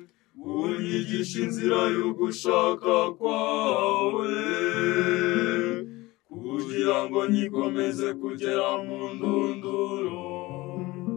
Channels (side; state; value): right; quieter; 20.4 dB